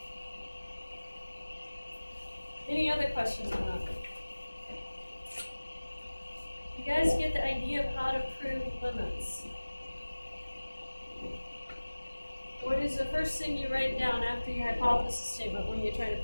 Any other questions on that? You guys get the idea of how to prove limits. What is the first thing you write down after your hypothesis statement when you're trying to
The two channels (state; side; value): inverted; both; correlation -1.00